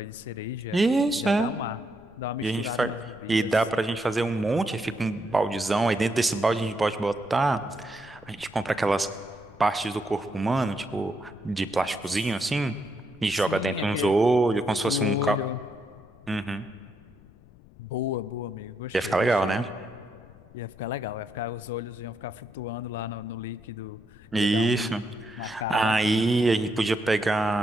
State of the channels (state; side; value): noise; left; rumble, 24 dB below the sound